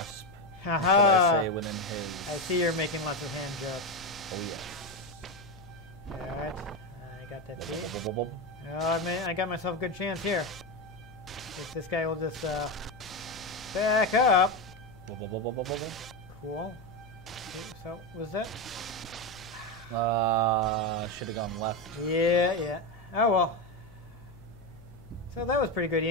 Haha! I say within his. I see you're making lots of hand jokes. Oh, yes. Alright, I got that key. Oh, I got myself a good chance here. If this guy will just back up. Cool. Okay, so, was that? Should have gone left. Yeah. Oh well. So that was pretty good,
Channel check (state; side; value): noise; left; hum, 21 dB below the sound